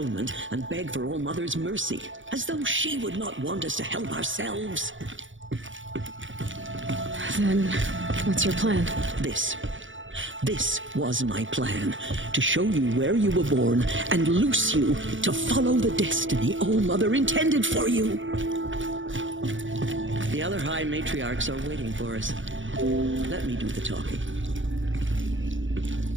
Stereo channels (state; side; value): late; left; 0.56 ms